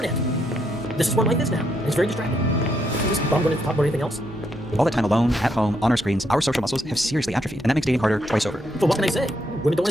This is where life is now. It's very distracting. I'm just bummed when it's talk about anything else. All that time alone, at home, on our screens, our social muscles have seriously atrophied, and that makes dating harder twice over. So what can I say? Women don't want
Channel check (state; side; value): normal; both; correlation 0.76